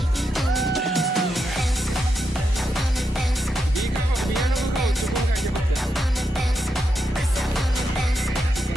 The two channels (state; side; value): normal; both; correlation 0.84